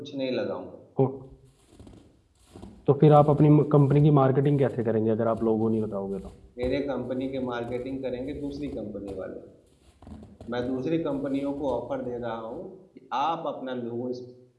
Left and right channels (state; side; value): identical; both; correlation 1.00